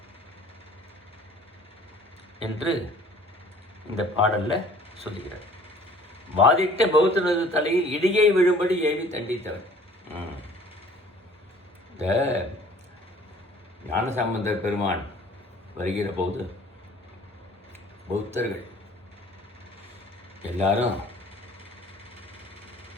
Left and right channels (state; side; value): normal; both; correlation 0.51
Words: என்று இந்த பாடல்ல சொல்லுகிறார். வாதிட்ட பௌத்தனது தலையில் இடியை விழும்படி ஏவி தண்டித்தவன். இந்த ஞானசம்பந்தர் பெருமான் வருகிற போது பௌத்தர்கள் எல்லாரும்